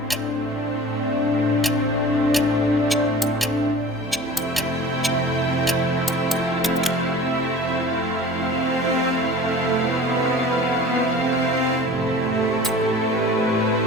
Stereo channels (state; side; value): normal; both; correlation 0.41